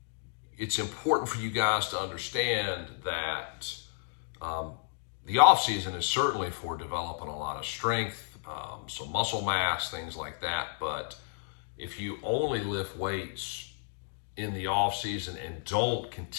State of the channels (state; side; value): silent; right; digital silence